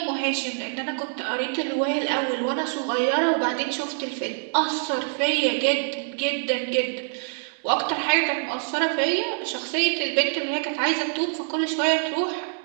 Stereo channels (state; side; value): silent; left; digital silence